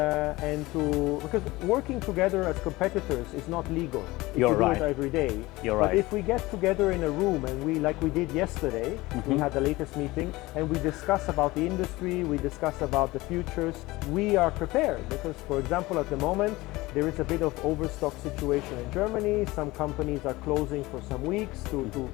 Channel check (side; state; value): right; quieter; 20.4 dB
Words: working together as competitors is not legal if you do it every day. But if we get together in a room and like we did yesterday, we had the latest meeting and we discuss about the industry, we discuss about the futures, we are prepared, because for example at the moment there is a bit of overstock situation in Germany. Some companies are closing for some weeks to